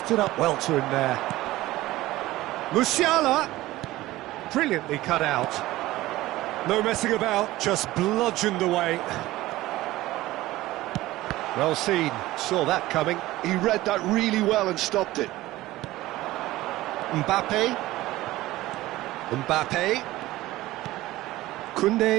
up well to him there. Musiala. Brilliantly cut out. No messing about, just bludgeoned away. Well seen, saw that coming. He read that really well and stopped it. Mbappe.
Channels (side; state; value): left; quieter; 17.1 dB